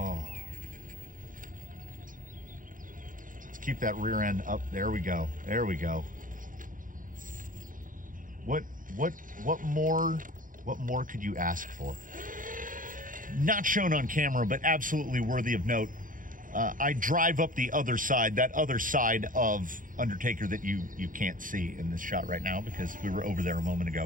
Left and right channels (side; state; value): left; late; 0.39 ms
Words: Let's keep that rear end up. There we go. There we go. What more could you ask for? Not shown on camera, but absolutely worthy of note. I drive up the other side, that other side of Undertaker that you can't see in this shot right now because we were over there a moment